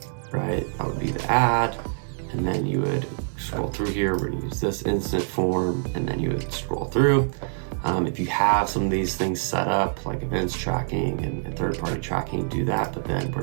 right? That would be the ad. And then you would scroll through here. We're gonna use this instant form, and then you would scroll through. If you have some of these things set up, like events tracking and third-party tracking, do that, but then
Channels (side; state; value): left; silent; digital silence